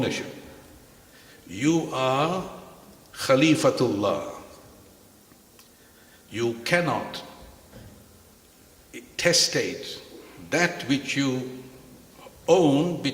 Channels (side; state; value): both; identical; correlation 1.00